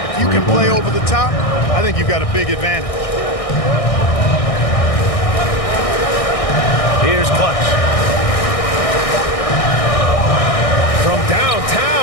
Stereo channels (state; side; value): late; right; 1.6 ms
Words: if you can play over the top, I think you've got a big advantage. Here's Clutch. From